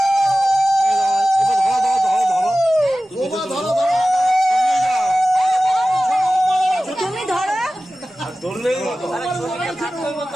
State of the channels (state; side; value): normal; both; correlation 0.96